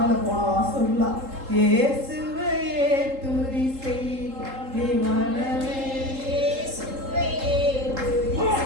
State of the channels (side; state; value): left; late; 3.8 ms